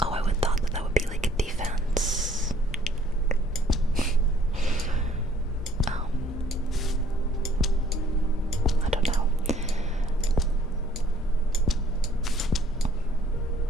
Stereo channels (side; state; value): both; normal; correlation 0.60